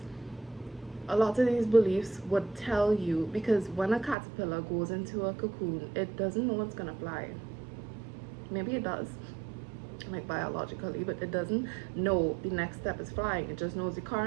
A lot of these beliefs would tell you, because when a caterpillar goes into a cocoon, it doesn't know it's gonna fly. Maybe it does, like biologically, but it doesn't know the next step is flying. It just knows the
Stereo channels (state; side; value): drops out; left; at 4.2 s